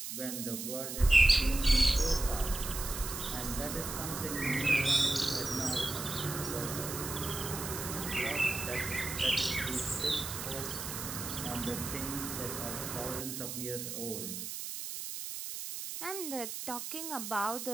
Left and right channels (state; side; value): noise; right; hiss, 6 dB below the sound